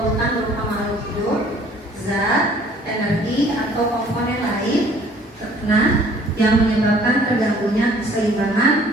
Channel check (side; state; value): both; normal; correlation 0.55